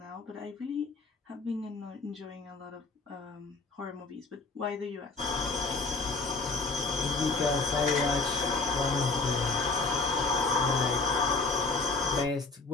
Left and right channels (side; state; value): right; quieter; 3.7 dB